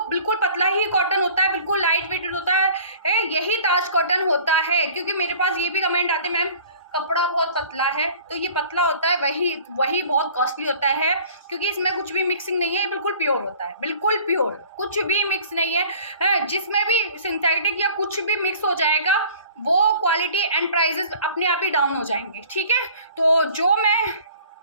बिल्कुल पतला ही कॉटन होता है, बिल्कुल लाइट वेटेड होता है, यही ताज कॉटन होता है। क्योंकि मेरे पास ये भी कमेंट आते हैं मैम कपड़ा बहुत पतला है, तो ये पतला होता है, वही बहुत कॉस्टली होता है क्योंकि इसमें कुछ भी मिक्सिंग नहीं है, ये बिल्कुल प्योर होता है, बिल्कुल प्योर, कुछ भी मिक्स नहीं है। जिसमें भी सिंथेटिक या कुछ भी मिक्स हो जाएगा वो क्वालिटी एंड प्राइजेस अपने आप ही डाउन हो जाएंगे, ठीक है। तो जो मैं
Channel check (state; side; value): inverted; both; correlation -0.48